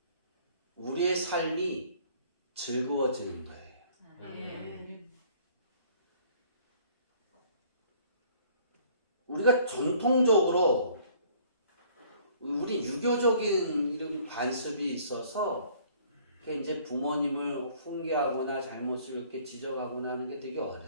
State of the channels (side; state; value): both; inverted; correlation -0.57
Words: 우리의 삶이 즐거워지는 거예요. 우리가 전통적으로 우리 유교적인 이런 관습이 있어서 이제 부모님을 훈계하거나 잘못을 이렇게 지적하거나 하는 게 되게